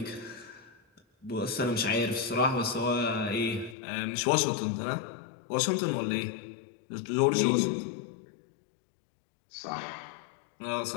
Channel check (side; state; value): right; drops out; at 3.8 s